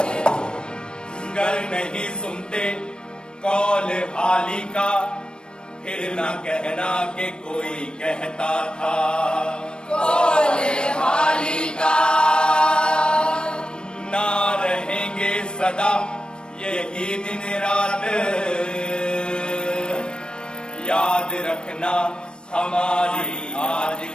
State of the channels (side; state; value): right; late; 0.053 ms